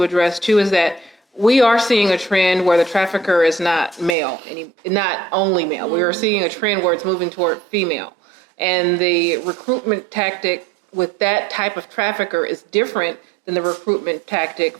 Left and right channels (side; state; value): left; drops out; at 4.2 s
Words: address too is that we are seeing a trend where the trafficker is not male, not only male. We are seeing a trend where it's moving toward female. And the recruitment tactic with that type of trafficker is different than the recruitment tactic